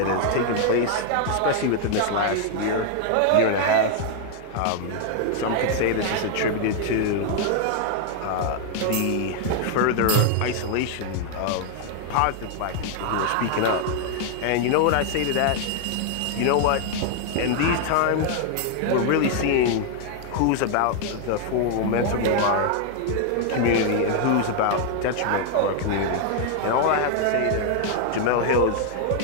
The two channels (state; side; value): different; both; correlation 0.00